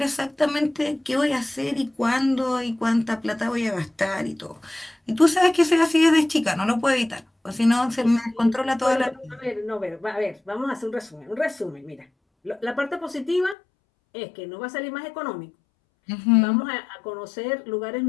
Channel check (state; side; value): drops out; right; at 13.6 s